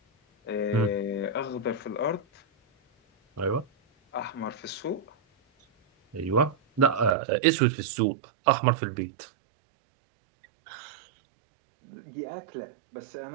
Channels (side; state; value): left; drops out; at 7.2 s